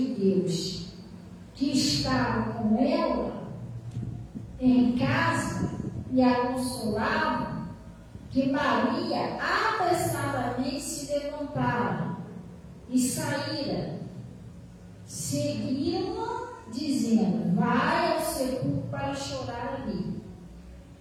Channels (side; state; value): both; identical; correlation 1.00